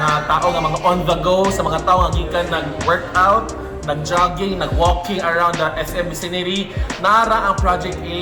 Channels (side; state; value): both; identical; correlation 1.00